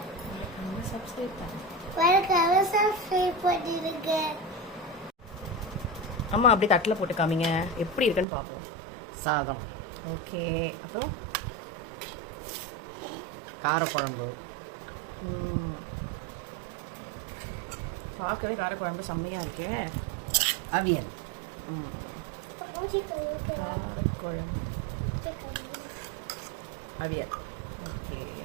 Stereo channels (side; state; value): left; drops out; at 8.2 s